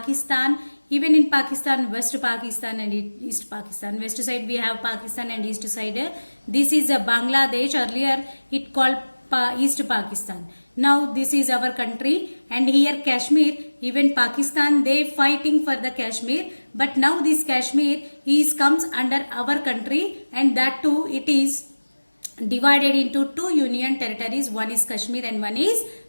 Even in Pakistan, West Pakistan and East Pakistan. West side we have Pakistan and East side. This is a Bangladesh. Earlier it called East Pakistan. Now this is our country, and here Kashmir. Even Pakistan they fighting for the Kashmir, but now this Kashmir comes under our country, and that too it is divided into two union territories. One is Kashmir and one is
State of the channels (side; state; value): both; inverted; correlation -1.00